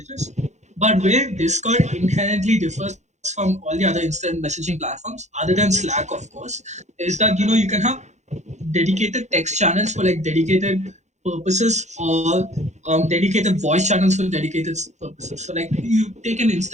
But where Discord inherently differs from all the other instant messaging platforms, other than Slack, of course, is that you can have dedicated text channels for like dedicated purposes, or dedicated voice channels for dedicated purposes. So like you take an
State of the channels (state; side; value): late; left; 0.33 ms